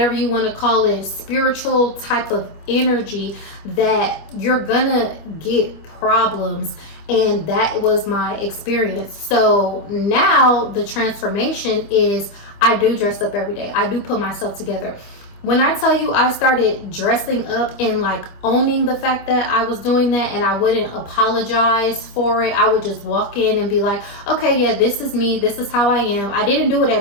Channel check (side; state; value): right; late; 25 ms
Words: you want to call it, spiritual type of energy that you're gonna get problems. And that was my experience. So now the transformation is I do dress up every day. I do put myself together. When I tell you I started dressing up and like owning the fact that I was doing that, and I wouldn't apologize for it. I would just walk in and be like, okay, yeah, this is me. This is how I am. I didn't do it